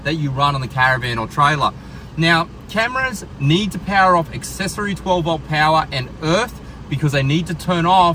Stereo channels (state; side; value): identical; both; correlation 1.00